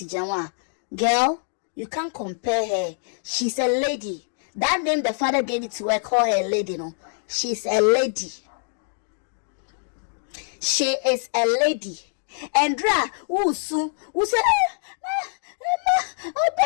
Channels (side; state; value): right; silent; digital silence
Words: Janwa? Girl, you can't compare her. She's a lady. That name the father gave it to her, call her a lady, no. She's a lady. She is a lady. And who say